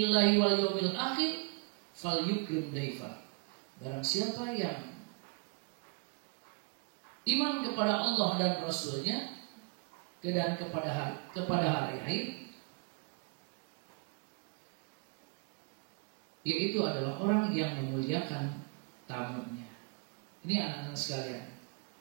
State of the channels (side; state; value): left; quieter; 34.9 dB